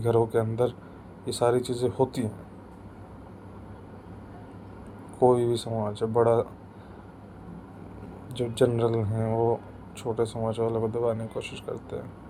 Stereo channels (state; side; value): identical; both; correlation 1.00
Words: के अंदर ये सारी चीज़ें होती हैं। कोई भी समाज है बड़ा, जो जनरल हैं वो छोटे समाज वालों को दबाने की कोशिश करते हैं,